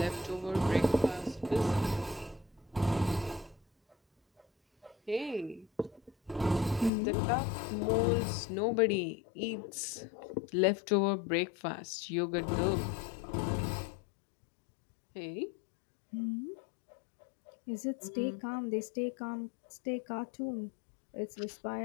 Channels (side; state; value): right; drops out; at 6.9 s